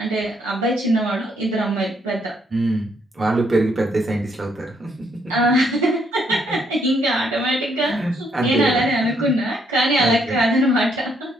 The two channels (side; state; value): both; normal; correlation 0.71